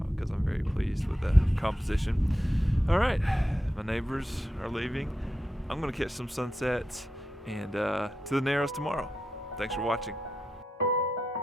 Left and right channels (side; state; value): both; normal; correlation 0.87